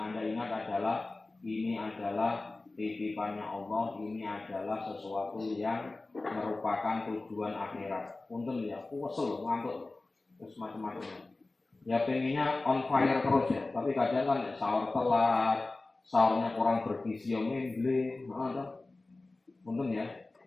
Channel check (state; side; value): quieter; right; 3.2 dB